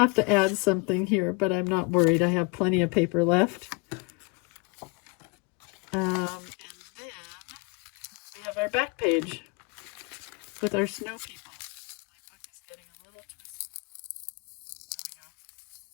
to add something here, but I'm not worried. I have plenty of paper left. And then we have our our back page with our snow people. My book is getting a little twisted. There we go.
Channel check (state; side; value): quieter; right; 29.9 dB